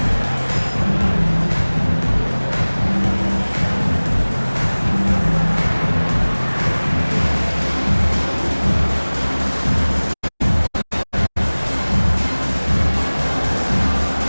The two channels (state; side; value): inverted; both; correlation -1.00